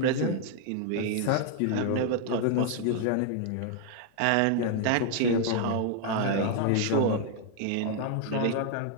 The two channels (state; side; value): different; both; correlation 0.00